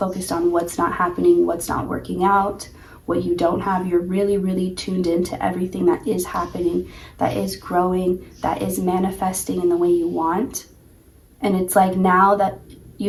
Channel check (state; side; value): identical; both; correlation 1.00